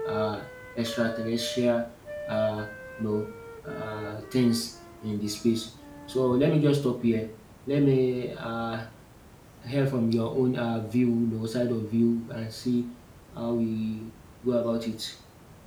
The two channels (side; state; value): both; identical; correlation 1.00